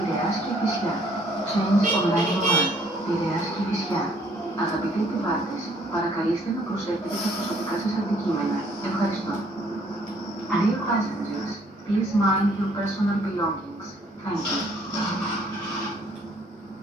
και Κηφισιά. Change online 1, Πειραιάς και Κηφισιά. Αγαπητοί επιβάτες, παρακαλείστε να προσέχετε τα προσωπικά σας αντικείμενα. Ευχαριστώ. Dear passengers, please mind your personal belongings. Thank you.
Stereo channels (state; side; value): normal; both; correlation 0.62